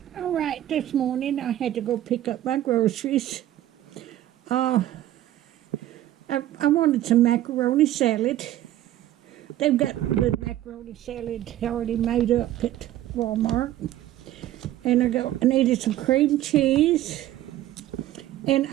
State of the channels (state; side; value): quieter; left; 13.4 dB